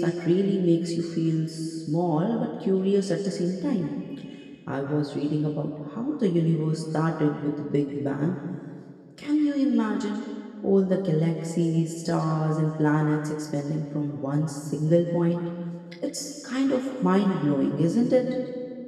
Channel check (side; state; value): both; identical; correlation 1.00